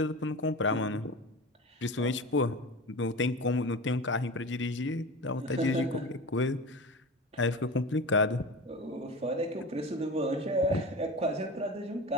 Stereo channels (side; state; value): both; normal; correlation 0.30